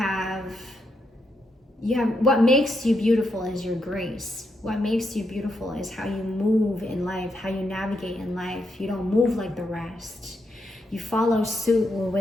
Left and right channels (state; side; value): normal; both; correlation 0.81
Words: what makes you beautiful is your grace. What makes you beautiful is how you move in life, how you navigate in life. You don't move like the rest. You follow suit with